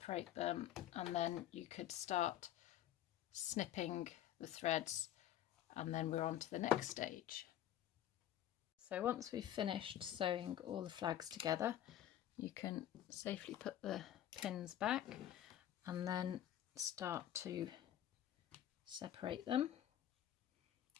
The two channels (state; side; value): quieter; right; 11.8 dB